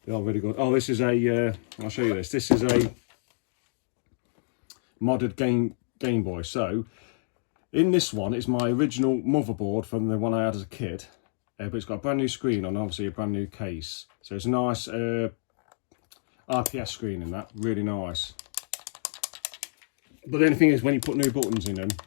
They are really good. Oh, this is a. I'll show you this. This is a modded Game Boy. So in this one, it's my original motherboard from the one I had as a kid, but it's got a brand new screen on, obviously a brand new case. So it's a nice RPS screen in that, really nice. But the only thing is, when you put new buttons in them,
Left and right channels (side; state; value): right; silent; digital silence